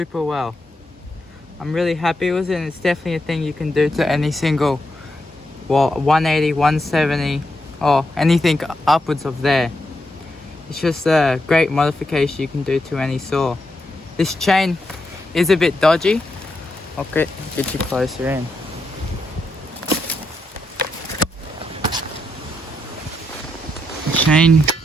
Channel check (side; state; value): both; normal; correlation 0.82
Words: well. I'm really happy with it, and it's definitely a thing you can do to any single, well, 180, 170, or anything upwards of there. It's just a great modification you can do to any saw. This chain is a bit dodgy. I'll get you closer in. The chain